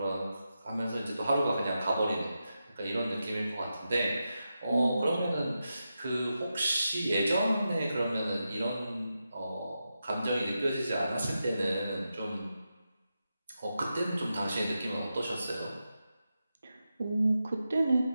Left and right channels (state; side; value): inverted; both; correlation -0.89